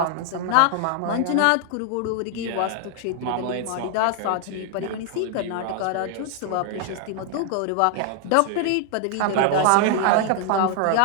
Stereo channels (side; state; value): both; different; correlation 0.00